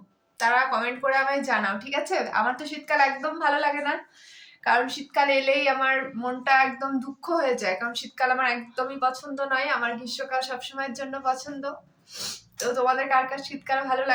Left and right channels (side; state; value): both; identical; correlation 1.00